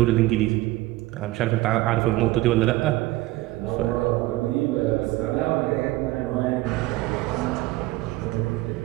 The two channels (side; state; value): left; quieter; 18.6 dB